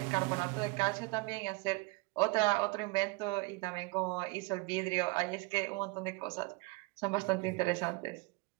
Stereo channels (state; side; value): quieter; left; 26.1 dB